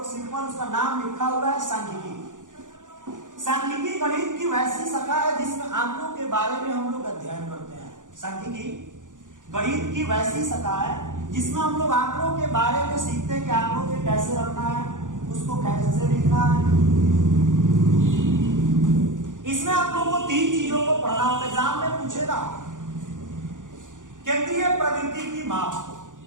सिंपल उसका नाम लिखा हुआ है सांख्यिकी। सांख्यिकी गणित की वैसी शाखा है जिसमें आंकड़ों के बारे में हम लोग अध्ययन करते हैं। सांख्यिकी गणित की वैसी शाखा है जिसमें हम लोग आंकड़ों के बारे में सीखते हैं कि आंकड़ों के कैसे रखना है, उसको कैसे लिखना है। इसमें आप लोगों को 3 चीजों को पढ़ना होता है। एग्जाम में पूछेगा केंद्रीय प्रवृत्ति की माप।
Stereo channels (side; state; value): left; late; 0.87 ms